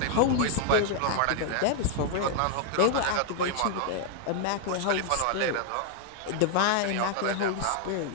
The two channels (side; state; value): both; different; correlation 0.00